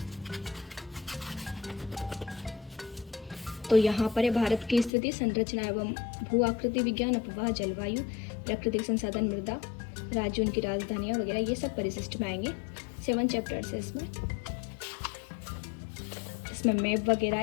तो यहाँ पर है भारत की स्थिति, संरचना एवं भू आकृति विज्ञान, अपवाह, जलवायु, प्राकृतिक संसाधन, मृदा, राज्य, उनकी राजधानियाँ वगैरह, ये सब परिशिष्ट में आएंगे। 7 चैप्टर्स है इसमें मैप वगैरह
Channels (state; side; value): drops out; right; at 4.9 s